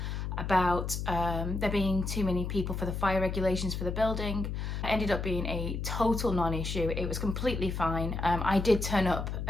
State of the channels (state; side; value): noise; left; hum, 3 dB below the sound